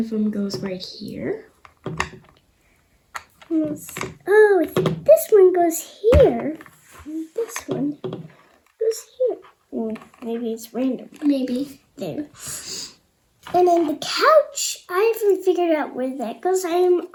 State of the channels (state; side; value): identical; both; correlation 1.00